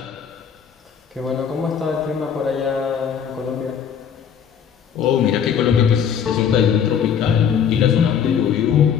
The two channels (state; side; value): quieter; right; 7.9 dB